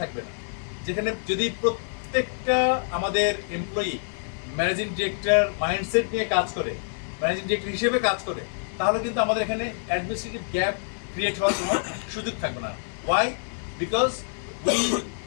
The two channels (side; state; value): right; silent; digital silence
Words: না, যেখানে যদি প্রত্যেকটা আমাদের এমপ্লয়ি ম্যানেজিং ডিরেক্টর মাইন্ডসেট নিয়ে কাজ করে, ম্যানেজিং ডিরেক্টর হিসেবে কাজ করে, তাহলে কিন্তু আমাদের এখানে অ্যাডমিনিস্ট্রেটিভ গ্যাপ ক্রিয়েট হওয়ার কোনো সুযোগ থাকবে না। Why? Because we